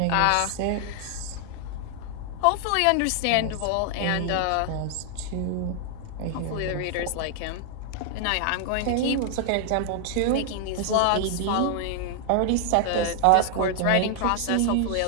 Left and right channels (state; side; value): different; both; correlation 0.00